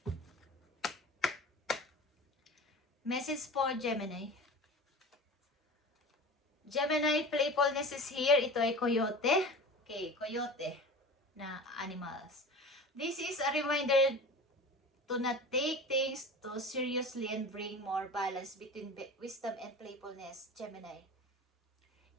Message for Gemini. Gemini, playfulness is here. Ito ay coyote. Okay, coyote na animals. This is a reminder to not take things too seriously and bring more balance between wisdom and playfulness, Gemini.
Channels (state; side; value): normal; both; correlation 0.35